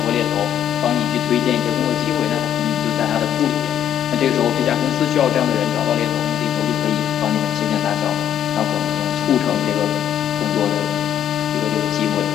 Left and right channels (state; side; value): quieter; right; 10.1 dB